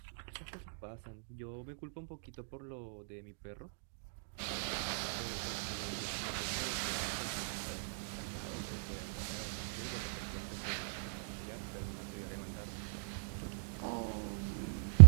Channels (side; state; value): left; silent; digital silence